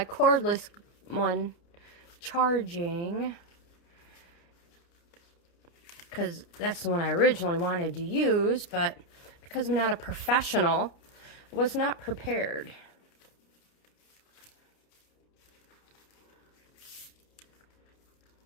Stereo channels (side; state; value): right; late; 29 ms